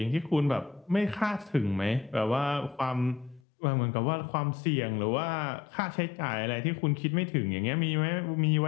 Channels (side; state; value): right; drops out; at 3.4 s